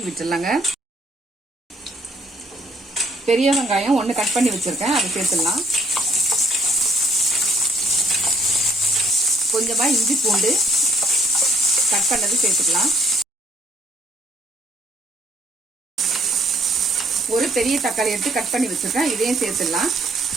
விட்டுடலாங்க. பெரிய வெங்காயம் 1 கட் பண்ணி வச்சிருக்கேன், அதை சேர்த்துடலாம். கொஞ்சமா இஞ்சி பூண்டு கட் பண்ணது சேர்த்துக்கலாம். ஒரு பெரிய தக்காளி எடுத்து கட் பண்ணி வச்சிருக்கேன், இதையும் சேர்த்துடலாம்.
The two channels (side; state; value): both; normal; correlation 0.66